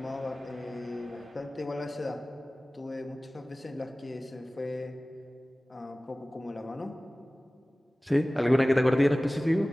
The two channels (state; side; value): normal; both; correlation 0.98